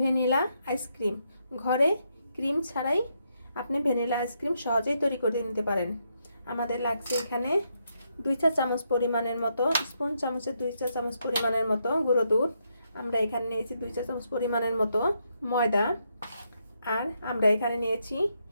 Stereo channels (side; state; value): both; inverted; correlation -0.79